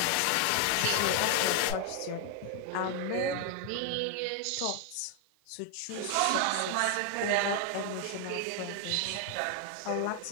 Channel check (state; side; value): different; both; correlation 0.00